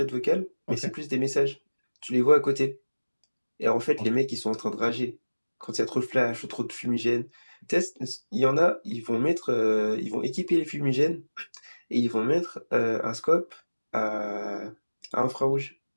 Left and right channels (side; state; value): both; inverted; correlation -1.00